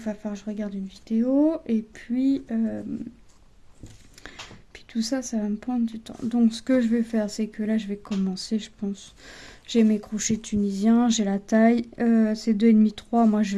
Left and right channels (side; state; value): both; identical; correlation 1.00